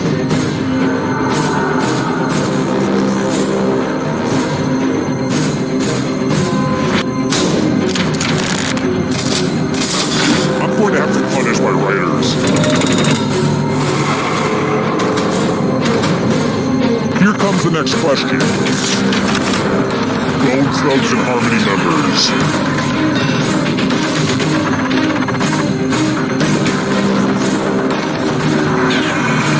I'm going to have to punish my writers. Here comes the next question. Bone Thugs and Harmony members.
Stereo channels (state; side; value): identical; both; correlation 1.00